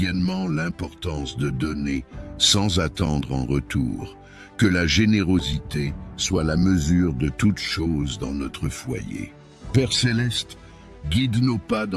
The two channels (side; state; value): both; identical; correlation 1.00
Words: l'importance de donner sans attendre en retour, que la générosité soit la mesure de toute chose dans notre foyer. Père Céleste, guide nos pas